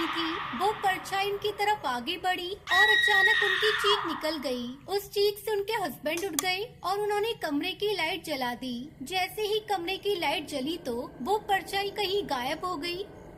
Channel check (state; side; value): identical; both; correlation 1.00